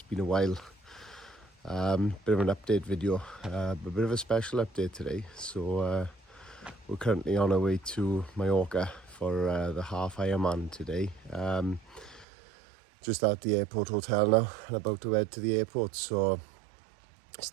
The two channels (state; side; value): drops out; left; at 12.2 s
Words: been a while. Bit of an update video, a bit of a special update today. So we're currently on our way to Mallorca for the half Ironman today. Just at the airport hotel now and about to head to the airport, so